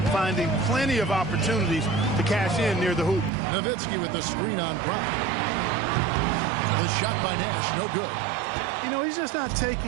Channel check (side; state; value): left; drops out; at 3.3 s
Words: finding plenty of opportunities to cash in near the hoop. Nowitzki with the screen on Brown. The shot by Nash, no good. You know, he's just not